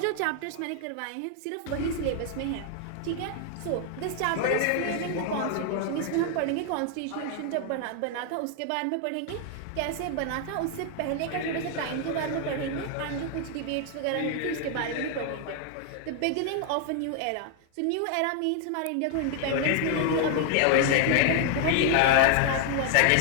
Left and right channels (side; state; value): both; different; correlation 0.00